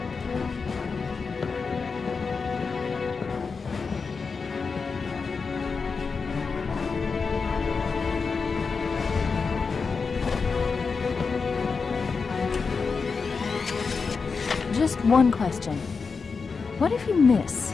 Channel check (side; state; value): right; quieter; 4.9 dB